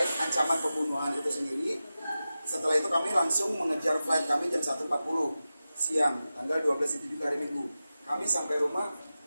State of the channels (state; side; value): inverted; both; correlation -0.94